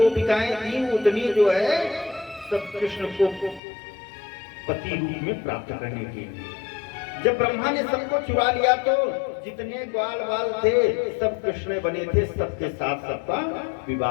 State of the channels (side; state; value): right; drops out; at 3.6 s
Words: थी उतनी जो है सब कृष्ण को पति रूप में प्राप्त करने के लिए। जब ब्रह्मा ने सबको चुरा लिया तो जितने ग्वाल वाल थे सब कृष्ण बने थे, सबके साथ सबका